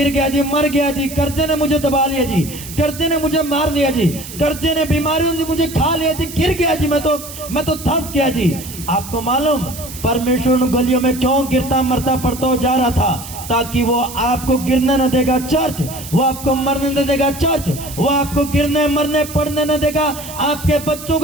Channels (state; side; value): noise; right; hiss, 13 dB below the sound